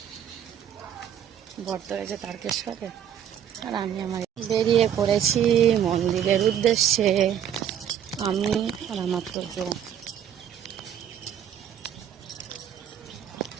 বর্ত হয়েছে তারকেশ্বরে, আর আমি আমার বেরিয়ে পড়েছি মন্দিরের উদ্দেশ্যে। আমি আর আমার তো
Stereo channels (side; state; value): left; quieter; 9.4 dB